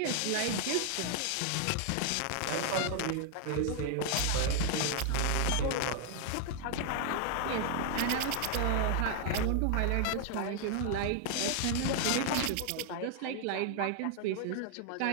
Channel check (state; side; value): different; both; correlation 0.00